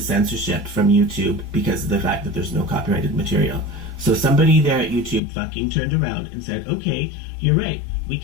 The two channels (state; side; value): drops out; right; at 5.2 s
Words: censorship from YouTube because of the fact that there's no copyrighted material. So somebody there at YouTube fucking turned around and said, okay, you're right, we